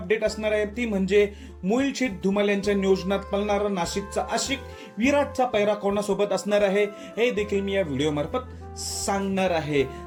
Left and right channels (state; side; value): identical; both; correlation 1.00